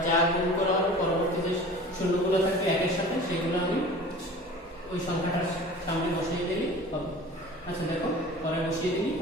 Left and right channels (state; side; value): normal; both; correlation 0.41